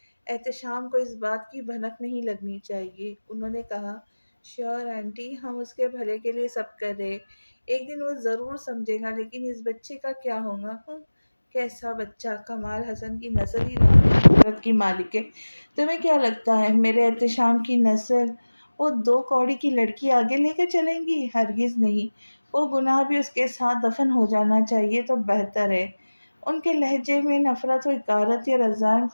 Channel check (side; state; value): both; inverted; correlation -1.00